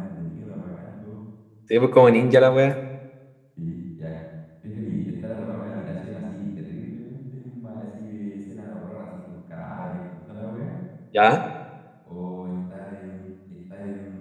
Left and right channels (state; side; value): identical; both; correlation 1.00